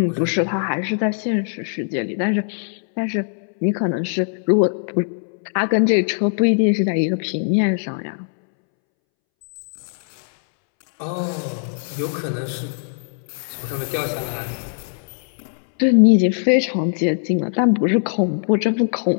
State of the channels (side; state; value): right; silent; 65 dB below the other